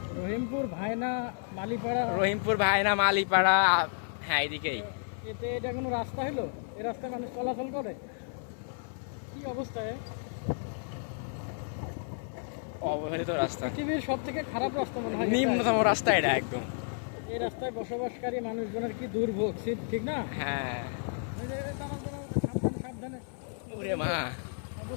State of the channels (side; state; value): right; silent; 56 dB below the other